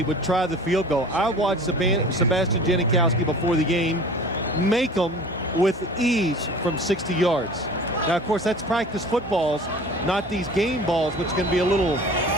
would try the field goal. I watched Sebastian Janikowski before the game make them with ease from 60 yards. Now, of course, that's practice footballs, not these game balls, which can be a little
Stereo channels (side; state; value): both; normal; correlation 0.42